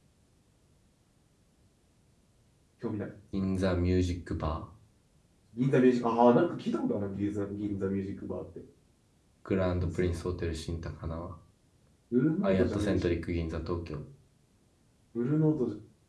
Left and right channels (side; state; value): both; identical; correlation 1.00